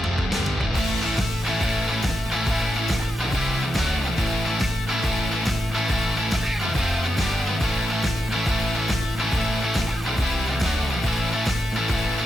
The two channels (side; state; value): both; normal; correlation 0.86